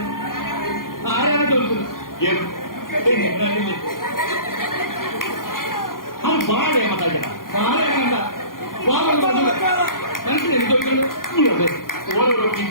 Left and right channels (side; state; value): right; late; 0.91 ms